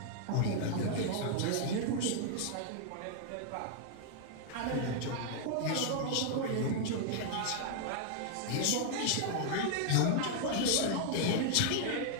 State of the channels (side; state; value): both; different; correlation -0.01